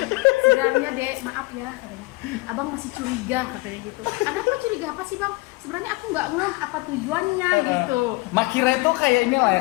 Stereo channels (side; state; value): right; quieter; 24.2 dB